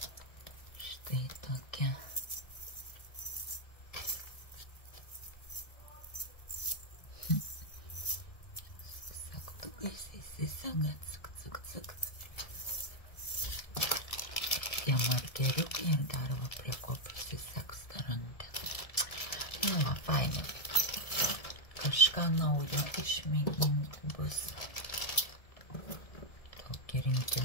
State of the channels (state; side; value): late; right; 1.7 ms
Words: Tai tokia. Sagtukais įsisega, cik, cik, cik. Tie markeriukai ir dar va prie ko prisiseks tą rankeną. Nu va, fainai. Kažką naujo išmėginti bus. Tokį